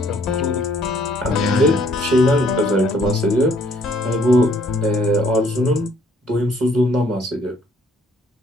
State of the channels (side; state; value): both; normal; correlation 0.62